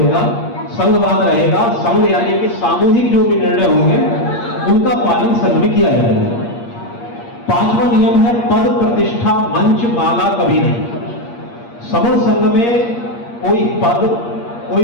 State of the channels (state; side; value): late; right; 8.5 ms